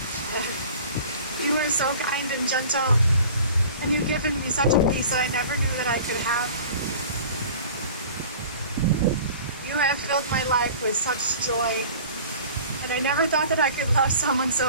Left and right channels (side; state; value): both; inverted; correlation -0.44